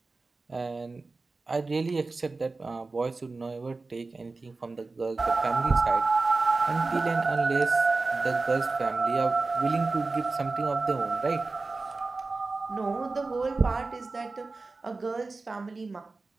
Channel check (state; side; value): quieter; left; 3.7 dB